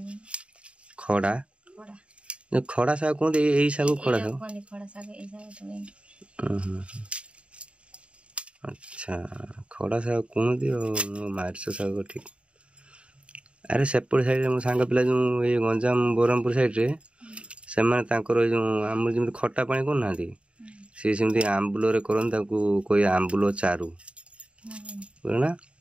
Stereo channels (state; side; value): late; left; 0.059 ms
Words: खड़ा खड़ा साग कौन यही साग खड़ा साग अच्छा खड़ा साग कौन मार्च साग ठीक अरे सेपट साइड मो सांग पिला जो ये गंजाम ब्रह्मपुर साइड रे से जो आम जमी खटा पानी करना सी सेमती आंबुल करन कोई आंबुल चारू बुझना